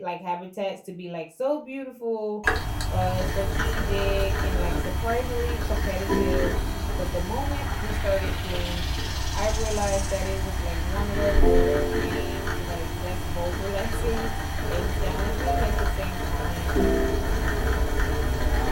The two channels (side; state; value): both; identical; correlation 1.00